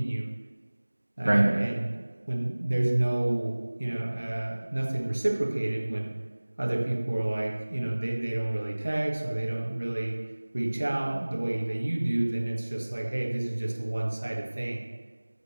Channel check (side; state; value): both; inverted; correlation -1.00